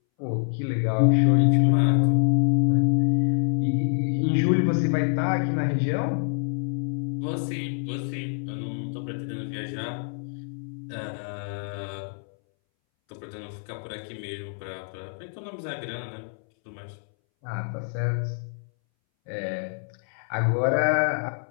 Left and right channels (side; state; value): right; silent; 61 dB below the other